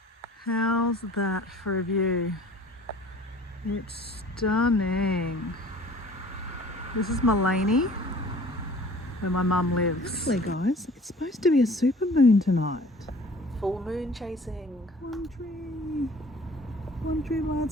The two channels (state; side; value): normal; both; correlation 0.48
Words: How's that for a view? It's stunning. This is Mullaney, where my mum lives. Actually, guys, it's supposed to be a super moon tonight. Full moon chasing. One tree by